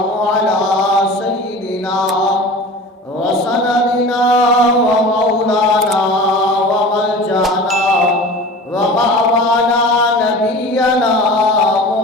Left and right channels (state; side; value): normal; both; correlation 0.38